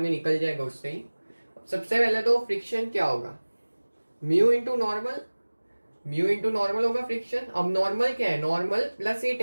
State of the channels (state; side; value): inverted; both; correlation -1.00